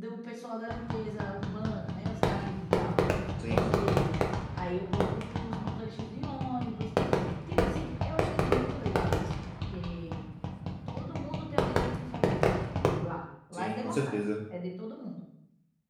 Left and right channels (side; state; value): both; identical; correlation 1.00